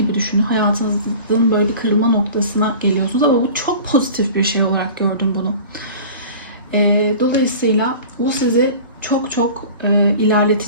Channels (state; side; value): inverted; both; correlation -0.40